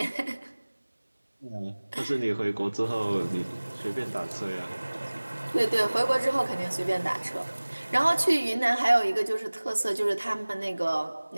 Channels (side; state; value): both; inverted; correlation -1.00